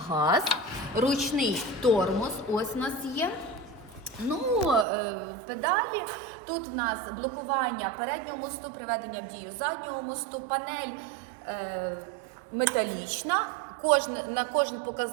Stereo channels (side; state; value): left; drops out; at 4.9 s